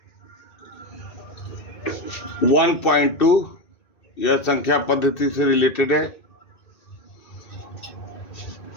1.2 यह संख्या पद्धति से रिलेटेड है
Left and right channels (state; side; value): late; right; 2.6 ms